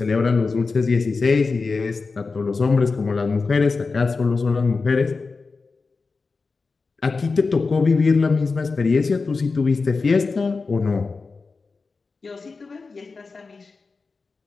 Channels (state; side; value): quieter; right; 4.3 dB